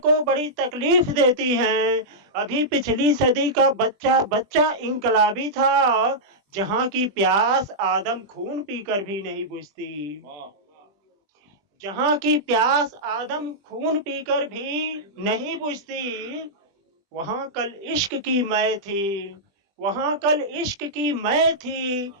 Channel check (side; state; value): left; late; 20 ms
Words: बड़ी तकलीफ देती हैं। अभी पिछली सदी का बच्चा बच्चा इंकलाबी था। जहां की प्यास आदम खून पीकर भी नहीं बुझती। जहां की प्यास आदम खून पीकर भी नहीं बुझती, वहां कल इश्क की मै थी। वहां कल इश्क की मै थी,